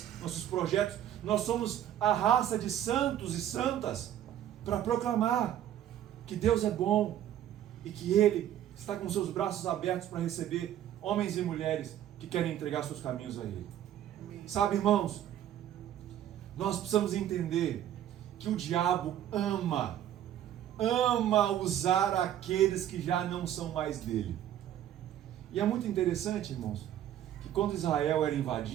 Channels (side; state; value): left; quieter; 11.3 dB